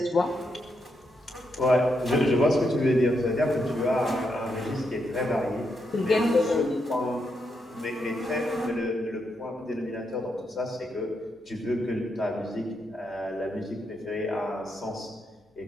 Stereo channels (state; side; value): normal; both; correlation 0.81